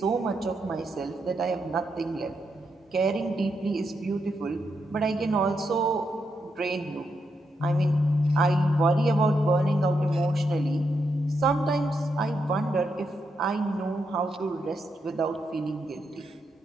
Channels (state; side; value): normal; both; correlation 0.82